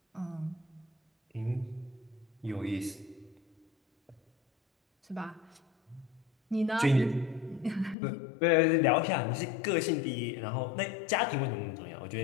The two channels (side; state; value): right; drops out; at 8.0 s